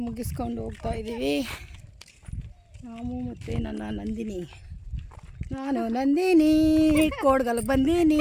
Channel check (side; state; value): both; identical; correlation 1.00